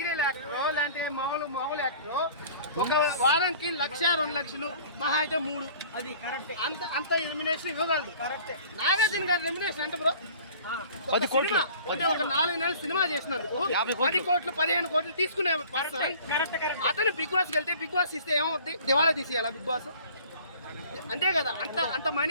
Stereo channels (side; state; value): both; inverted; correlation -0.47